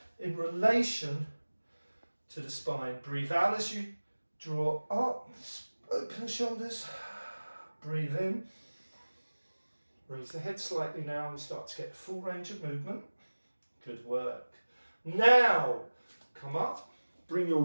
in relation to the spine. Breathe out as you draw up, open the shoulders, breathe in, raise the head slightly now and start to get full range of movement. Good work. Now, come up, bring your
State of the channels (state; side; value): inverted; both; correlation -1.00